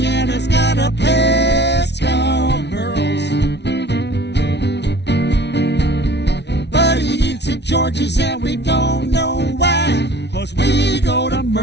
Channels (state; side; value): late; right; 0.50 ms